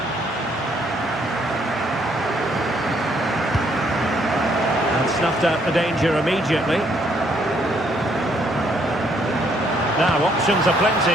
Snuffed out the danger immediately. Now options are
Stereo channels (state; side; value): normal; both; correlation 0.69